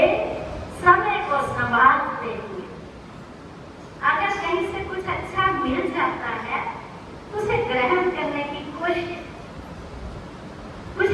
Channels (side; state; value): both; identical; correlation 1.00